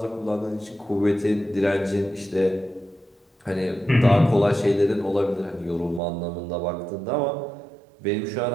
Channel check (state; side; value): drops out; left; at 6.0 s